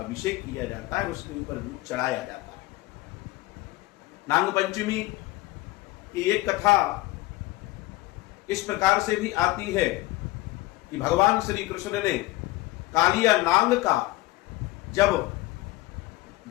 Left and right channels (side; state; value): right; quieter; 18.6 dB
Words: किया जाता है, उसके ऊपर दूध चढ़ाया जाता है। नाग पंचमी की एक कथा इस प्रकार से भी आती है कि भगवान श्री कृष्ण ने कालिया नाग का जब